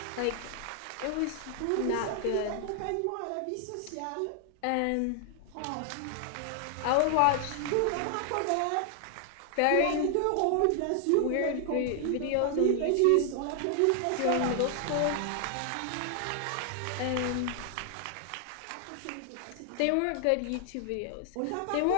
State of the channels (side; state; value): both; different; correlation 0.00